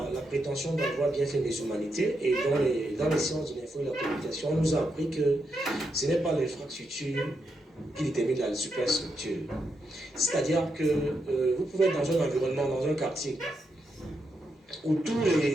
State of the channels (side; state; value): both; normal; correlation 0.83